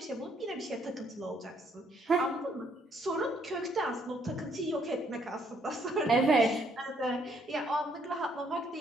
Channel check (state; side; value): normal; both; correlation 0.69